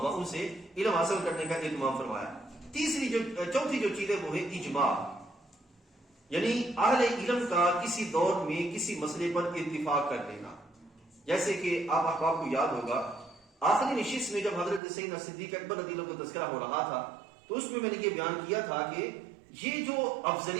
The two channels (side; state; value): left; drops out; at 14.8 s